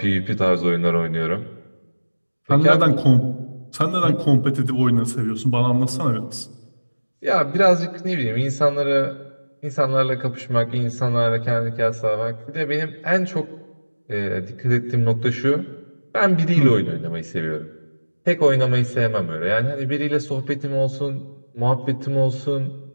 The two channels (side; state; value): both; inverted; correlation -1.00